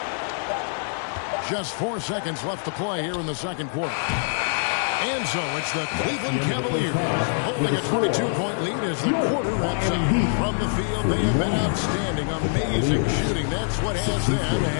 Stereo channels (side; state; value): right; silent; digital silence